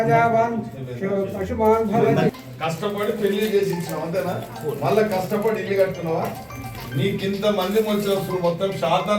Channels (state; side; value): identical; both; correlation 1.00